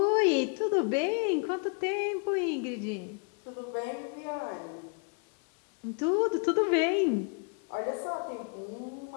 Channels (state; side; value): quieter; right; 35.4 dB